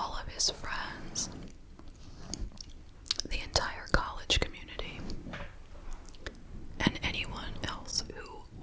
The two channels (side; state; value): both; identical; correlation 1.00